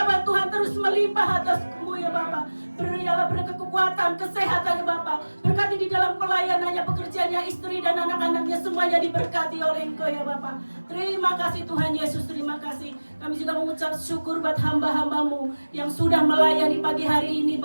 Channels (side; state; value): both; inverted; correlation -1.00